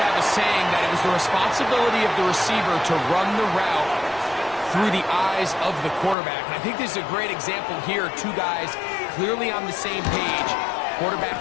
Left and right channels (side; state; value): right; drops out; at 6.2 s